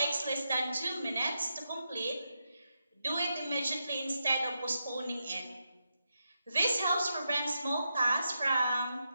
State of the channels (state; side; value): inverted; both; correlation -0.86